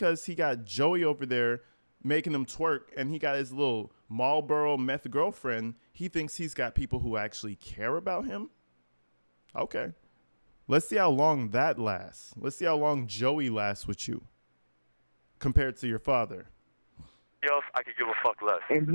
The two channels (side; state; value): both; inverted; correlation -1.00